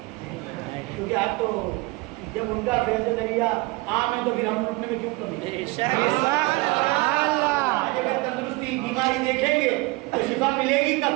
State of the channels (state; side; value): quieter; left; 24.0 dB